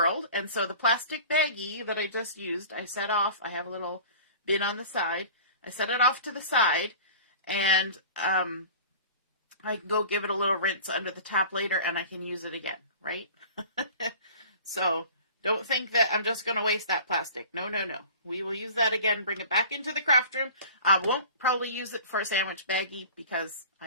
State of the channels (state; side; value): inverted; both; correlation -0.41